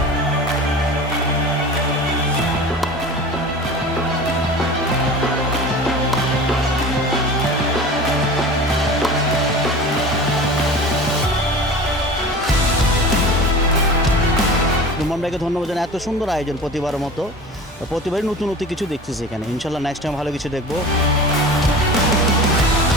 রুমন ভাইকে ধন্যবাদ জানাই, এত সুন্দর আয়োজন প্রতিবারের মতো। প্রতিবারই নতুন কিছু দেখতেছি এখানে, ইনশাল্লাহ নেক্সট টাইম ভালো কিছু দেখবো।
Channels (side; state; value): both; normal; correlation 0.36